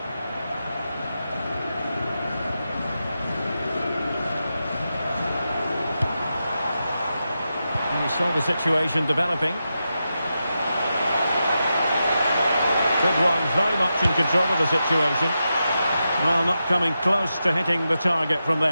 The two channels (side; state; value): both; inverted; correlation -0.89